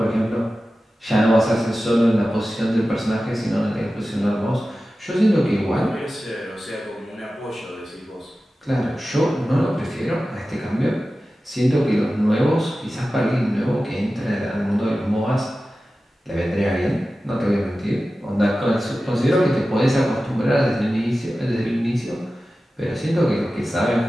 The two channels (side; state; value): both; normal; correlation 0.95